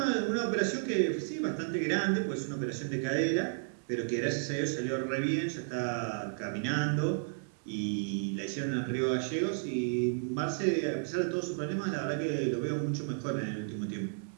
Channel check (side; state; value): left; silent; digital silence